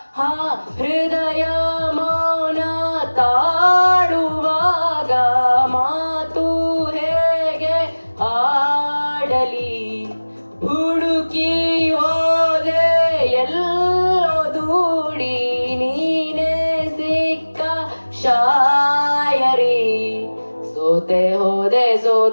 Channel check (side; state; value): both; inverted; correlation -1.00